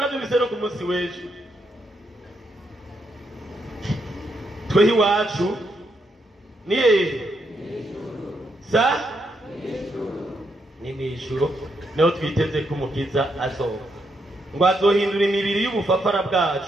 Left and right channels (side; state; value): both; normal; correlation 0.79